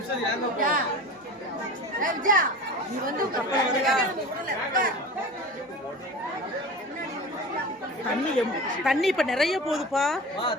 நீ வந்து தண்ணி இப்ப நிறைய போகுதுப்பா.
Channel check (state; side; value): normal; both; correlation 0.34